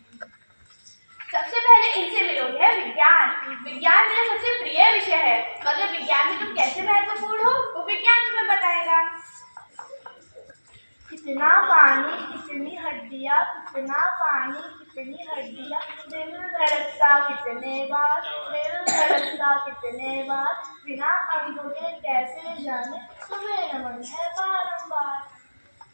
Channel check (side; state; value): both; inverted; correlation -1.00